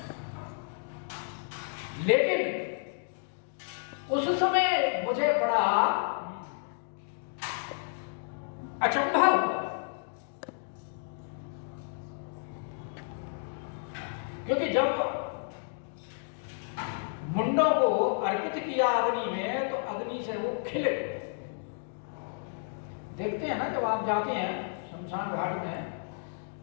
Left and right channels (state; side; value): silent; right; digital silence